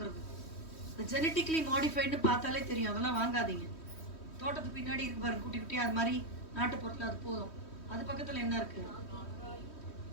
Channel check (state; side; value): late; right; 3.1 ms